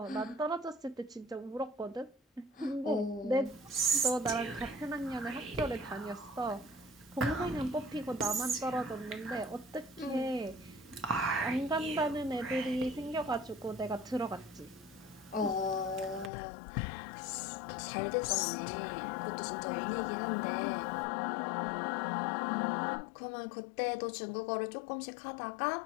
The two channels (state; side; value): drops out; right; at 16.3 s